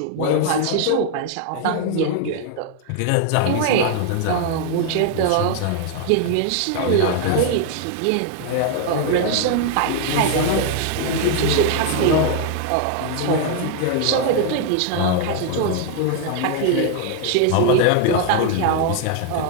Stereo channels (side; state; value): both; different; correlation 0.00